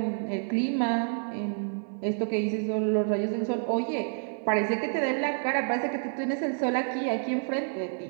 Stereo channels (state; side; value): silent; left; digital silence